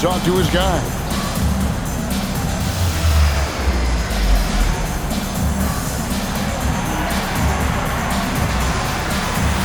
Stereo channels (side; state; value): both; identical; correlation 1.00